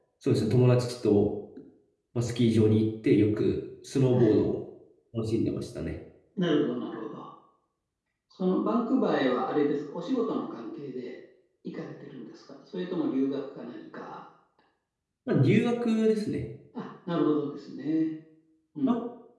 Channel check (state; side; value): identical; both; correlation 1.00